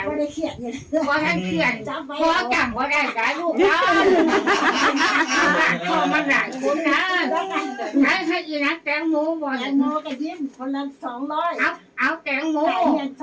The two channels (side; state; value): both; identical; correlation 1.00